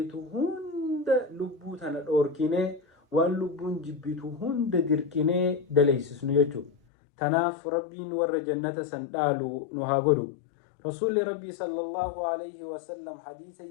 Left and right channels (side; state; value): right; drops out; at 6.7 s